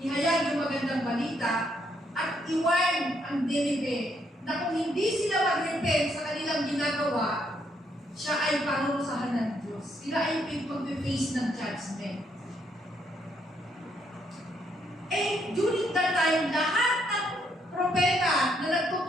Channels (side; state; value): both; normal; correlation 0.73